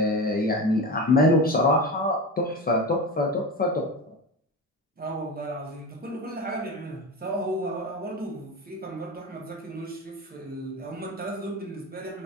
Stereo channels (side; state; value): both; normal; correlation 0.25